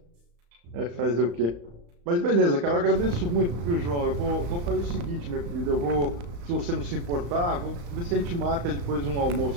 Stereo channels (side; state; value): left; late; 35 ms